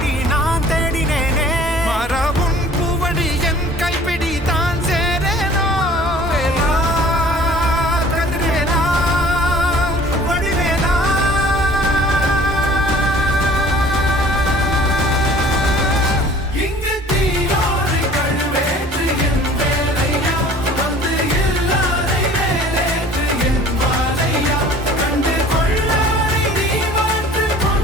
நான் தேடினேனே மாறாவும் பூவடி என் கைப்பிடி தான் சேரேனோ கதிரேனா வடிவேலா இங்கு தீயோடு கழுவேற்று என் வேலையா வந்து எல்லாரை வேலேற்று என் வாழையா கண்டு கொள்ளாரை நீ மாற்று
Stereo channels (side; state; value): both; normal; correlation 0.49